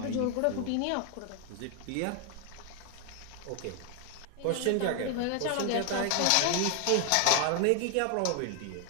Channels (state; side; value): different; both; correlation 0.00